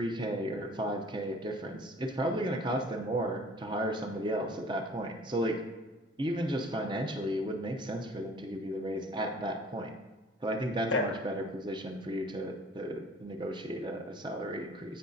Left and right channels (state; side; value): normal; both; correlation 0.50